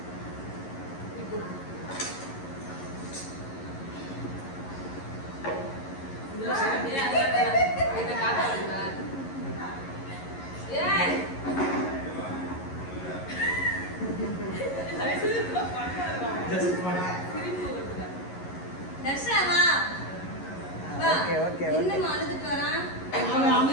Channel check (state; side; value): late; right; 11 ms